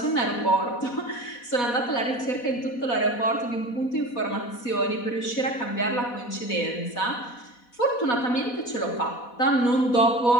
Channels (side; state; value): right; late; 4.1 ms